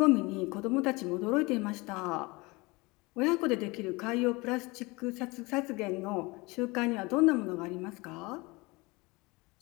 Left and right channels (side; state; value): right; quieter; 24.4 dB